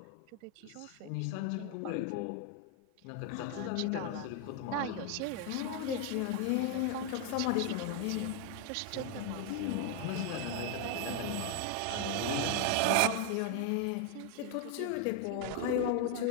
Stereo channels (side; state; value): both; different; correlation 0.01